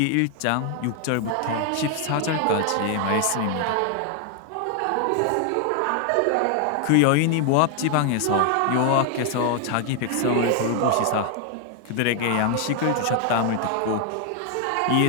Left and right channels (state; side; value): different; both; correlation 0.00